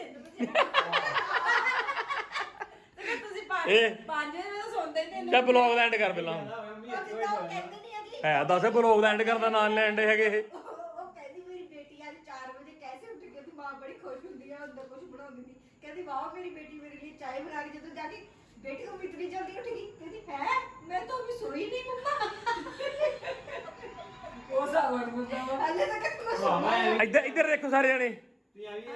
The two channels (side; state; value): both; identical; correlation 1.00